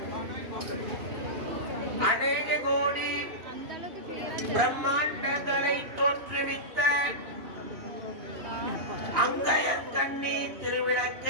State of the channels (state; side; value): late; left; 2.8 ms